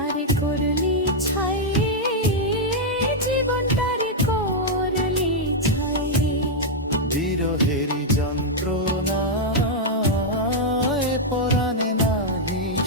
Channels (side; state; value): both; normal; correlation -0.03